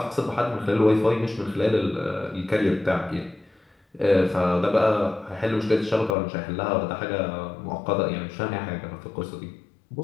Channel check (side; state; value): right; drops out; at 6.2 s